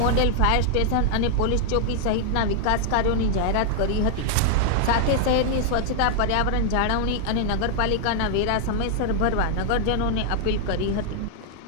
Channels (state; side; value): different; both; correlation -0.01